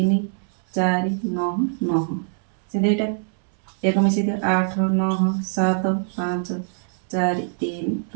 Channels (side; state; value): left; silent; 63 dB below the other